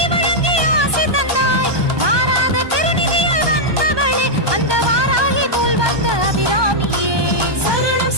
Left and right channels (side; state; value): left; late; 1.2 ms